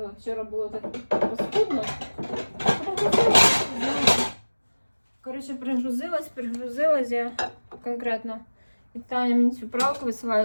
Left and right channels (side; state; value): both; inverted; correlation -1.00